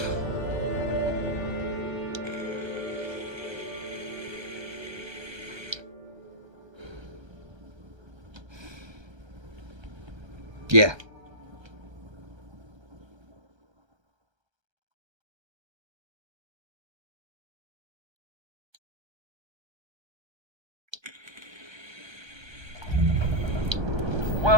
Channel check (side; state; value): left; late; 1.3 ms